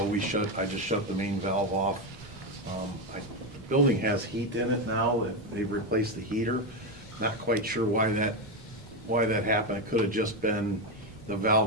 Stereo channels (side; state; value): both; normal; correlation 0.09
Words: I just shut the main valve off. The building has heat in it now. They've replaced the heater. Not quite sure why that happened. It could have just been the